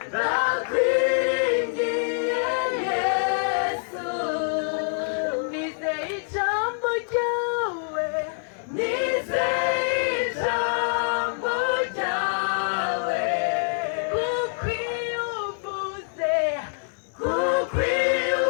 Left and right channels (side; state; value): right; silent; digital silence